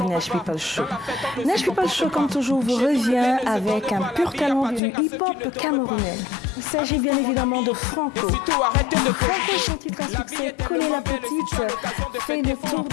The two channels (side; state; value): right; drops out; at 4.8 s